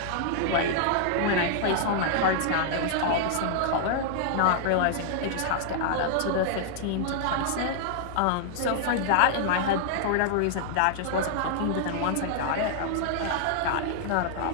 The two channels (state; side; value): different; both; correlation -0.01